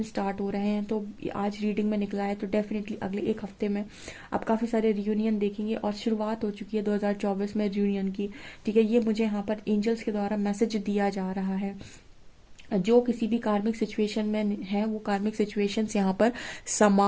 स्टार्ट हो रहे हैं। तो आज रीडिंग में निकला है, तो डेफिनेटली अगले एक हफ्ते में आप काफ़ी सारे रियूनियन देखेंगे और शुरुआत हो चुकी है 2024 में रियूनियन की। ठीक है, ये मुझे यहाँ पर एंजल्स के द्वारा मैसेज दिया जा रहा है। जो किसी भी कार्मिक सिचुएशन में है, वो कार्मिक सिचुएशंस यहाँ पर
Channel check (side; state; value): both; identical; correlation 1.00